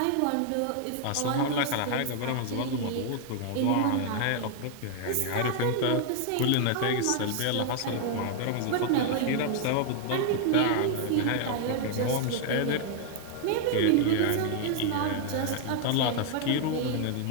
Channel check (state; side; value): different; both; correlation 0.00